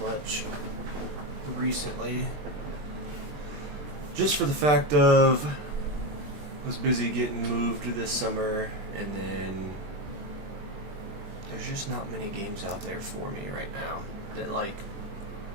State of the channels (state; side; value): late; left; 20 ms